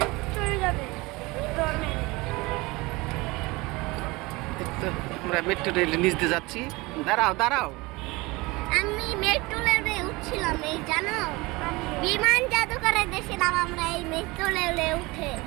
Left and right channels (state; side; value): quieter; left; 23.2 dB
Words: আমরা মেট্রো রেল নিচ দিয়ে যাচ্ছি। দাঁড়াও দাঁড়াও, আমি মেট্রো রেলে উঠছিলাম, এই জানো বিমান জাদুঘরে দেখছিলাম আমরা এই মেট্রো রেলে উঠে,